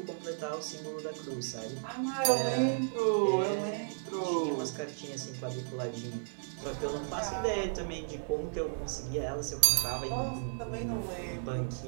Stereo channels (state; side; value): silent; left; digital silence